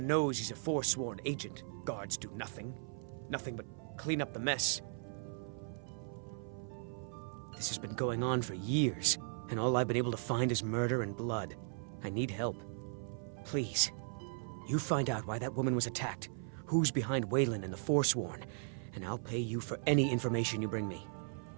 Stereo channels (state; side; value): silent; left; 53 dB below the other